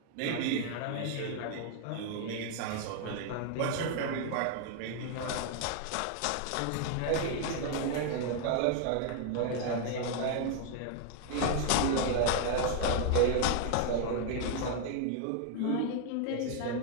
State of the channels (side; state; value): both; different; correlation 0.00